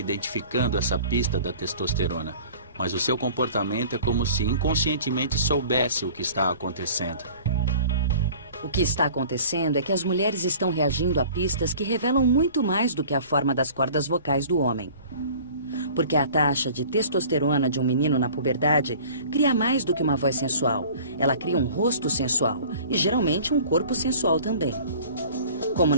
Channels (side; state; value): both; inverted; correlation -0.45